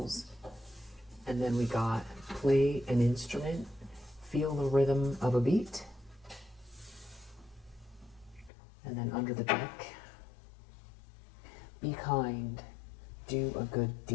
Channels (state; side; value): drops out; right; at 8.5 s